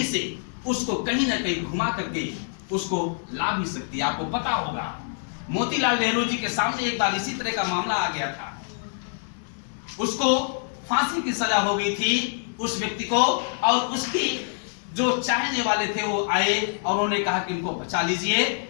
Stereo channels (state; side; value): silent; right; 61 dB below the other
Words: से उसको कहीं ना कहीं घुमा करके उसको ला भी सकती है। आपको पता होगा मोतीलाल नेहरू जी के सामने एक बार इसी तरह का मामला आ गया था, उसको फांसी की सजा हो गई थी उस व्यक्ति को, और उसकी जो चाहने वाले थे वो आए और उन्होंने कहा कि इनको बचा लीजिए।